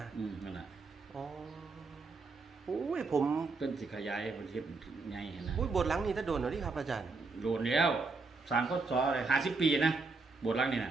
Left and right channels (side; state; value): left; quieter; 4.0 dB